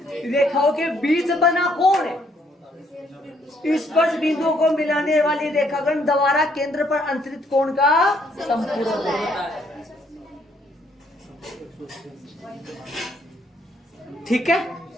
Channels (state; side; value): normal; both; correlation 0.68